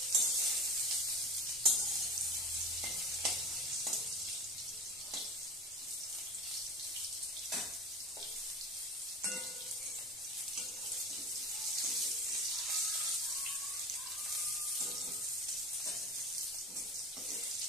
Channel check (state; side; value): normal; both; correlation 0.33